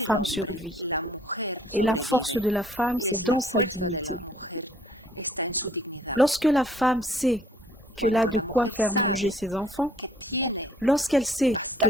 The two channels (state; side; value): normal; both; correlation 0.59